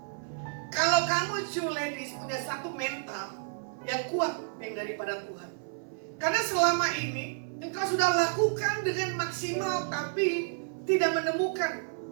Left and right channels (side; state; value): left; silent; 57 dB below the other